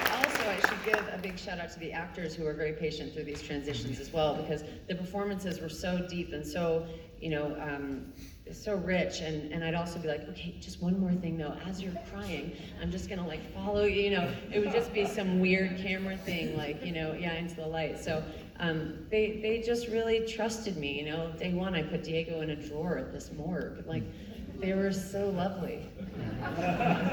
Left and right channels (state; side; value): identical; both; correlation 1.00